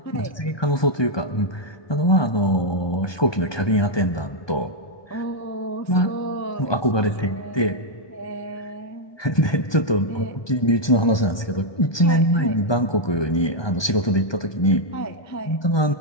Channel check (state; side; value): late; right; 1.2 ms